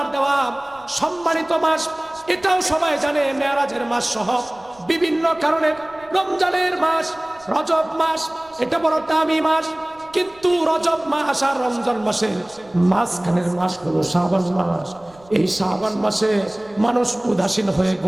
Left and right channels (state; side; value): noise; right; rumble, 28 dB below the sound